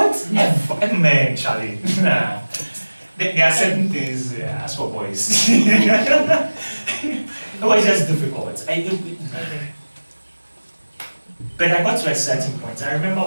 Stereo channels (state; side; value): inverted; both; correlation -1.00